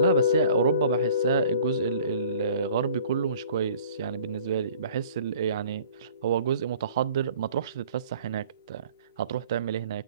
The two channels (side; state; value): both; inverted; correlation -0.50